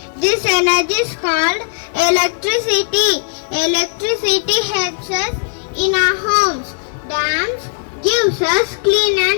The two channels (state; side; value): silent; right; digital silence